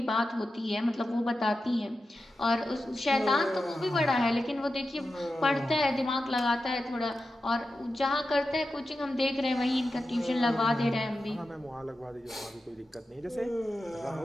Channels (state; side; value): normal; both; correlation 0.91